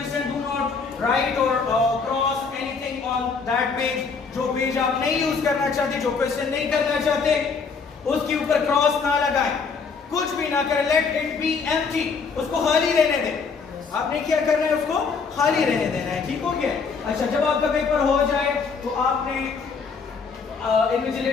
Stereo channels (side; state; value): right; quieter; 5.2 dB